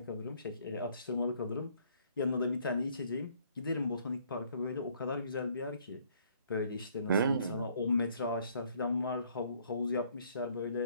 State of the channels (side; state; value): both; inverted; correlation -0.63